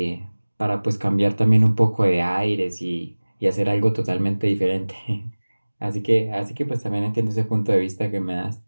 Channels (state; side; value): inverted; both; correlation -1.00